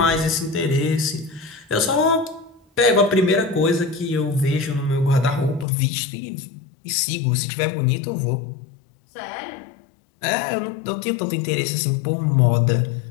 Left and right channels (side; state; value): right; drops out; at 5.7 s